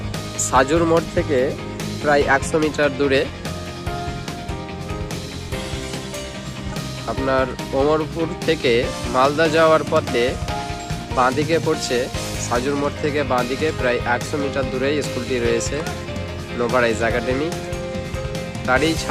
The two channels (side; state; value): both; identical; correlation 1.00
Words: সাজুর মোড় থেকে প্রায় 100 মিটার দূরে। আপনার ওমরপুর থেকে মালদা যাওয়ার পথে বাঁদিকে পড়ছে। সাজুর মোড় থেকে বাঁদিকে প্রায় 100 মিটার দূরে স্কুলটি রয়েছে, নোভারাইজ একাডেমি। তারই